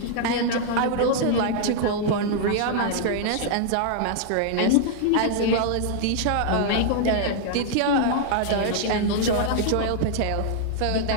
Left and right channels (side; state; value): both; different; correlation -0.01